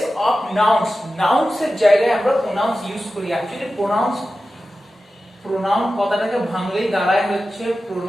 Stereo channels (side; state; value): both; normal; correlation 0.94